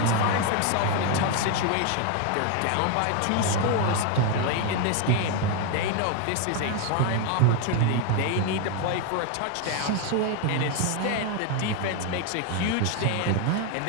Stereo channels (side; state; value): both; different; correlation 0.01